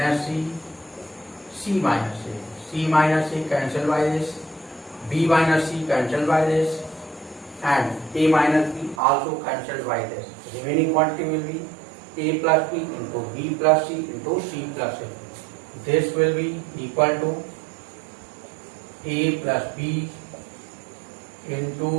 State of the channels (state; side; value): drops out; left; at 9.0 s